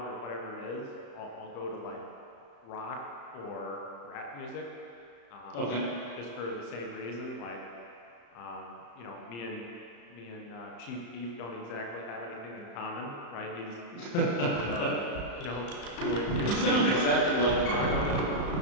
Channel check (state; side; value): late; right; 34 ms